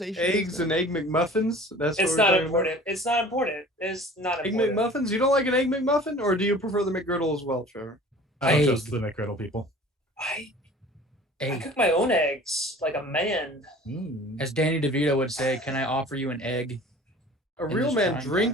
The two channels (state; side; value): normal; both; correlation 0.45